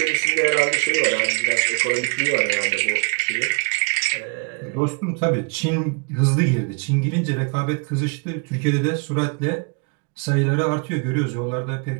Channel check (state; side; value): quieter; left; 35.1 dB